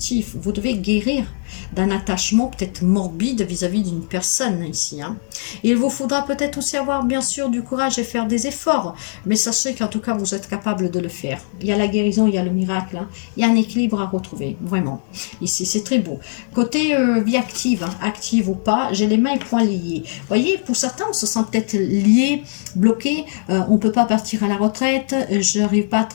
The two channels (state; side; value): silent; right; 60 dB below the other